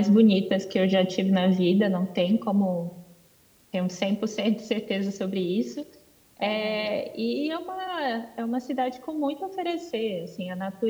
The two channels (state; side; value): identical; both; correlation 1.00